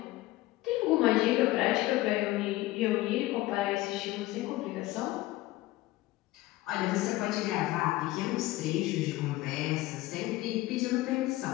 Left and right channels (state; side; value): quieter; right; 17.7 dB